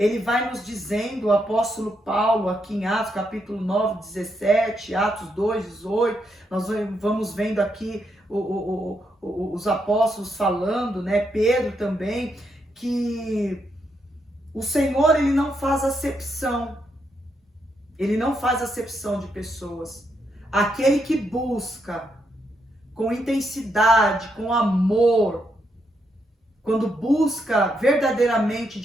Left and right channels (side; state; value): both; normal; correlation 0.80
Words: vai nos dizendo, o apóstolo Paulo, aqui em Atos capítulo 9, 17, Atos 2, 18, nós vamos vendo aqui os apóstolos falando, né, Pedro também, que o Senhor, ele não faz acepção. Ele não faz acepção de pessoas. Aquele que busca com intensidade, com amor, quando busca verdadeiramente